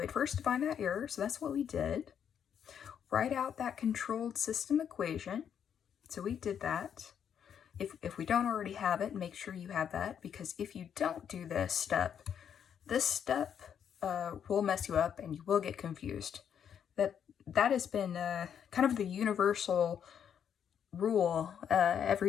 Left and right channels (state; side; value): quieter; right; 8.4 dB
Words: first define that error, so that's what we did. Write out that controlled system equation. So we did that. If we don't already have it, make sure you have that, because if you don't do this step will mess you up and you will get confused. That has been kind of the universal rule